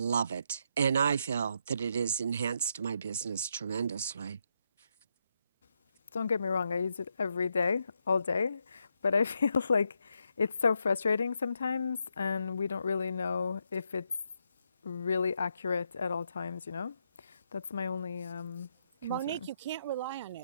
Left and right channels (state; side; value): inverted; both; correlation -0.80